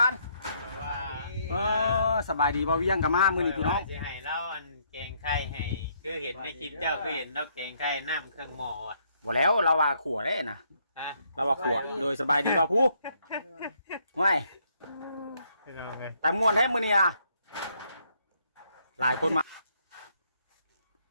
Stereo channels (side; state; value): both; inverted; correlation -0.71